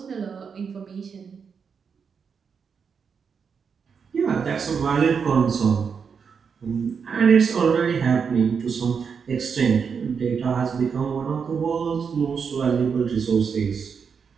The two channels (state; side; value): quieter; left; 6.2 dB